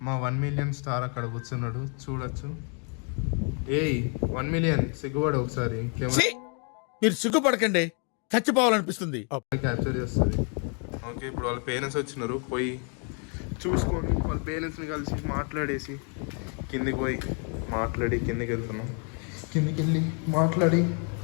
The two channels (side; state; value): right; quieter; 39.9 dB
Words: మా 1 మిలియన్ స్టార్ అక్కడ కూర్చున్నాడు, చూడొచ్చు. ఏయ్ 1 మిలియన్ సిగ్గుపడు ఒకసారి. మీరు సిగ్గుపడకండి, చచ్చిపోవాలనిపిస్తుంది. క్యాప్చర్ చేస్తుంది. ఓకే, ఇప్పుడు వాళ్ళ పేరెంట్స్ వచ్చినారు. పోయి చూసుకొని వాళ్ళ పేరెంట్స్ని కలిసి మాట్లాడేసి కిందికి పోయి మాట్లాడి కిందికి వెళ్తున్నాం. కిందికి వెళ్ళి మాట్లాడి